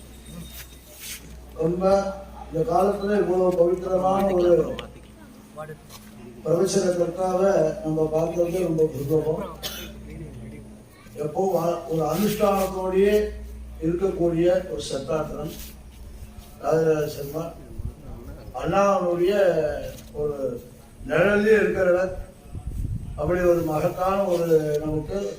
ரொம்ப இந்த காலத்துல இவ்வளவு பவித்திரமான ஒரு பிரவச்சன கர்த்தாவை நம்ம பார்க்கறது ரொம்ப புத்தகம். எப்போ ஒரு அனுஷ்டானத்தோடையே இருக்கக்கூடிய ஒரு சத்தாத்திரம் ராஜராஜ சர்மா அண்ணாவுடைய ஒரு நிழலே இருக்கிறவர். அப்படி ஒரு மகத்தான ஒரு நமக்கு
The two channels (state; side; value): identical; both; correlation 1.00